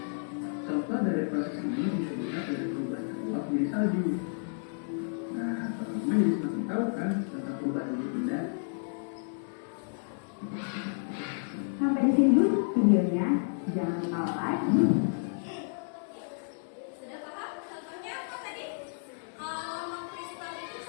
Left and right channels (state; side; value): silent; right; digital silence